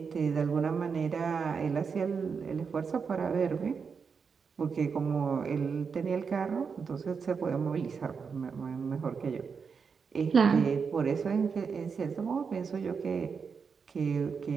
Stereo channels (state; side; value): quieter; left; 5.8 dB